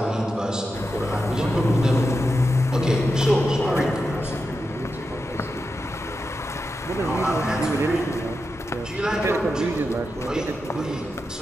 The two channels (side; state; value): both; normal; correlation 0.89